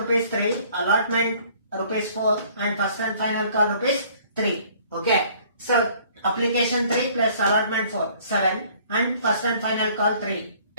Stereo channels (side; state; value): both; inverted; correlation -0.57